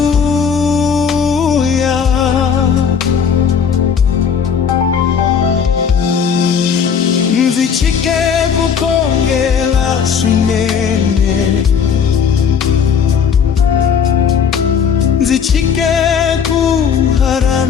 Nzichike kukongela swinene, nzichike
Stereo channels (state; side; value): quieter; right; 6.9 dB